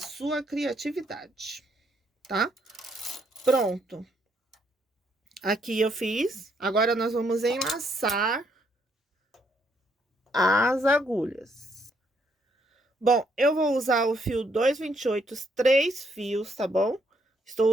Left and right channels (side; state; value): both; normal; correlation 0.72